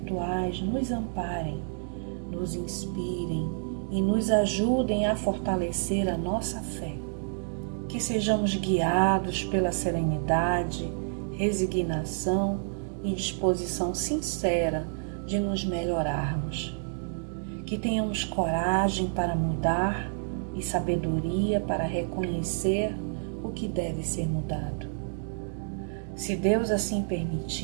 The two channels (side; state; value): left; silent; digital silence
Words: nos amparem, nos inspirem e nos ajudem a fortalecer a nossa fé. Que sejamos guiados pela serenidade, resignação e disposição sincera de nos melhorarmos. Que tenhamos coragem para mudar e sabedoria para reconhecer o que deve ser mudado. Se Deus assim